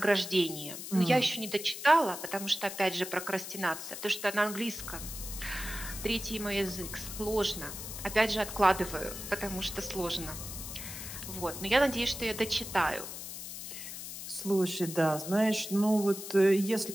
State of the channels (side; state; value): left; noise; hiss, 9 dB below the sound